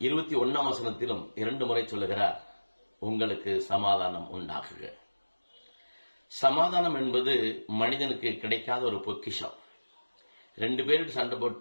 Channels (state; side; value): inverted; both; correlation -1.00